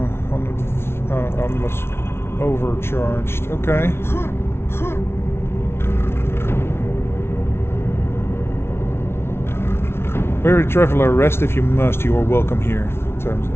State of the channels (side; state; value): right; late; 0.12 ms